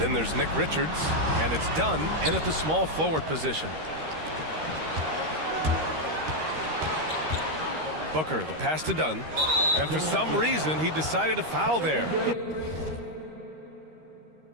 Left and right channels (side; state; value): left; late; 13 ms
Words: there's Nick Richards, and it's Dunn in at the small forward position. Booker, the pass to Dunn, and for some reason he decided to foul there.